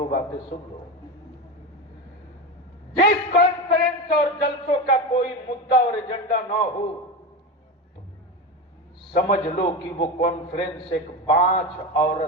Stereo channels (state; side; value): normal; both; correlation 0.20